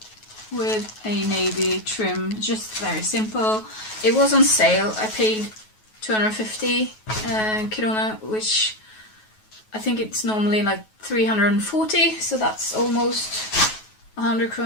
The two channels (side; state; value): right; late; 9.3 ms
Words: with a navy trim, just very simple. It was on sale. I paid 250 krona, which I think it's normally like 340, so that's almost 100